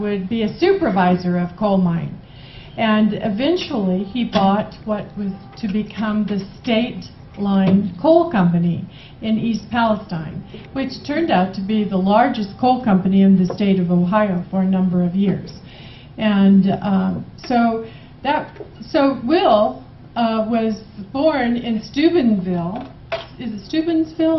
would be a supervisor of coal mine. And eventually he bought what was to become the State Line Coal Company in East Palestine, which turned out to be the largest coal company in the state of Ohio for a number of years. And so Will was born in Steubenville. Is it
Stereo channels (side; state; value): both; identical; correlation 1.00